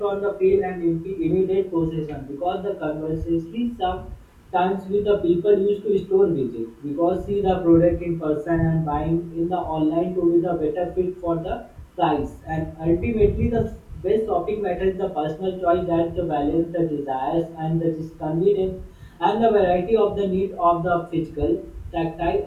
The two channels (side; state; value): both; identical; correlation 1.00